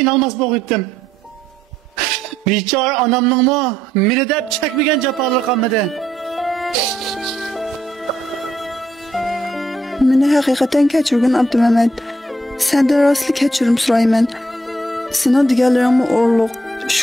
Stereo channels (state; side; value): normal; both; correlation 0.74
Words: bo'lgandim. Bechora onamningmi meni deb chekmagan jafolar qolmadi. Meni haqiqatan kechirgin Abdumamat. Sendan rostli kechirim so'rayman. Sening deganlaringni o'rliq.